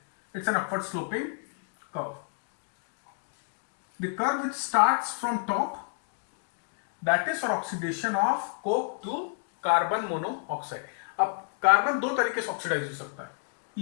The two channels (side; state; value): right; silent; digital silence